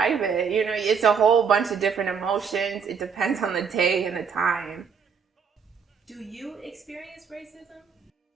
it. It's a whole bunch of different emotions. It depends on the day and the time. Do you experience racism?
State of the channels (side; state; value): left; quieter; 6.4 dB